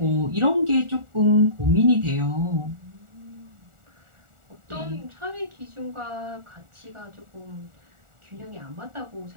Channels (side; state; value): left; late; 1.4 ms